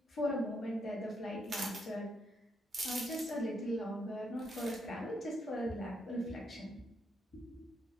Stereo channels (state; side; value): normal; both; correlation 0.77